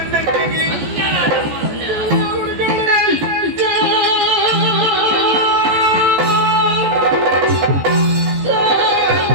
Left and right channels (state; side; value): late; left; 14 ms